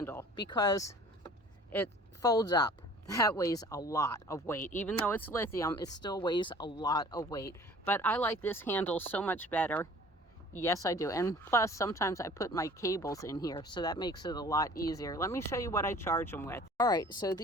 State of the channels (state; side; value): normal; both; correlation 0.48